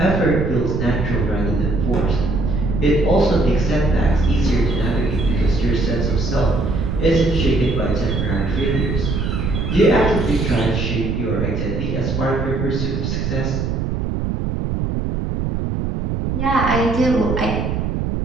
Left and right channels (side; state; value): right; noise; rumble, 1 dB below the sound